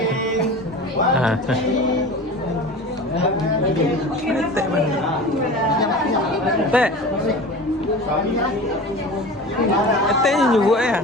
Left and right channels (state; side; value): normal; both; correlation 0.35